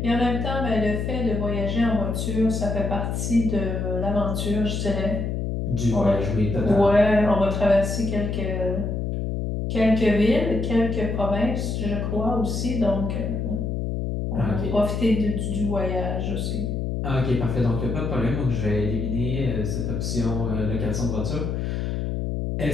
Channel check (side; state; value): left; noise; hum, 1 dB below the sound